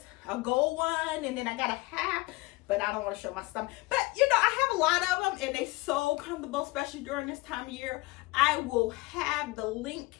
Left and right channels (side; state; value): right; quieter; 22.6 dB